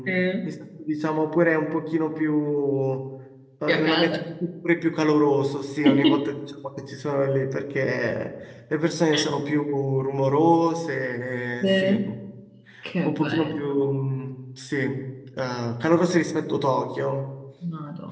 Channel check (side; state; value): both; identical; correlation 1.00